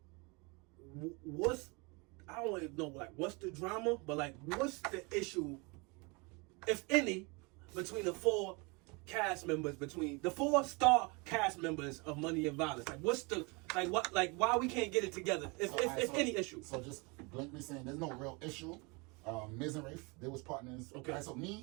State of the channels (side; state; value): left; quieter; 28.9 dB